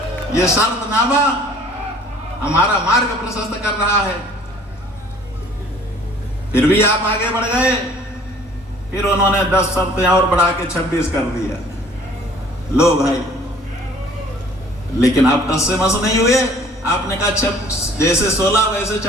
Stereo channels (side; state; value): both; normal; correlation 0.54